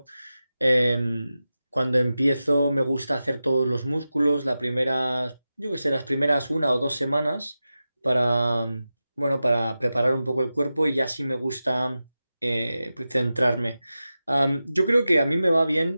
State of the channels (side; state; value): both; inverted; correlation -0.93